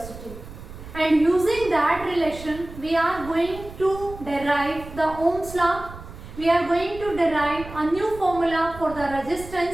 And using that relation, we are going to derive the Ohm's law. We are going to derive a new formula for the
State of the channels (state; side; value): noise; right; rumble, 14 dB below the sound